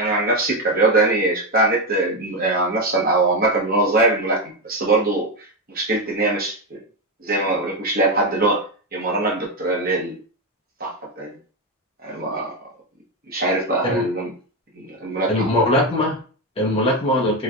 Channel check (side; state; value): both; normal; correlation 0.10